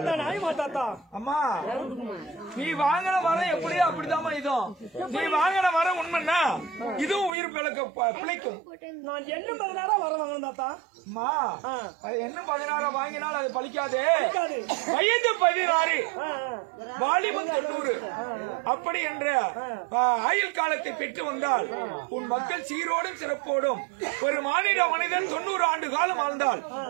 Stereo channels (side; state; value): left; drops out; at 7.3 s